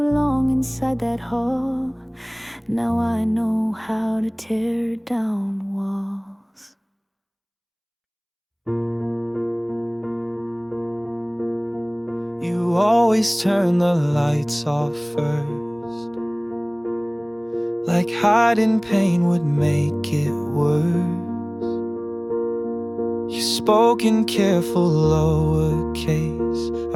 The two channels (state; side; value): identical; both; correlation 1.00